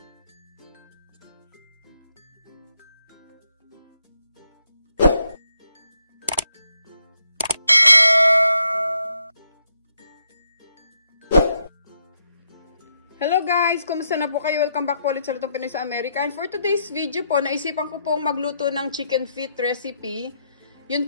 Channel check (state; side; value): inverted; both; correlation -0.78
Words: Hello guys! Kumusta na po kayo? Welcome back po ulit sa Lutong Pinoy sa Amerika. And for today's video po, naisipan ko pong magluto ng chicken feet recipe.